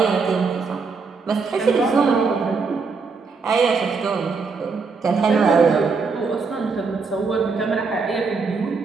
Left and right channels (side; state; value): left; quieter; 4.7 dB